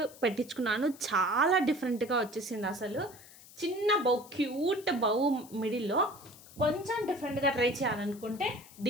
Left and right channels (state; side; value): noise; left; hiss, 20 dB below the sound